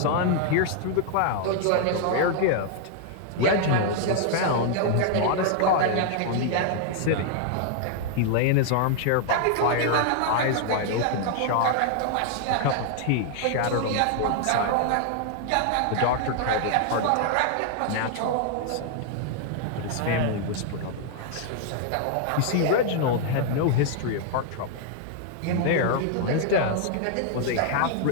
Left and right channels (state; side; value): different; both; correlation 0.00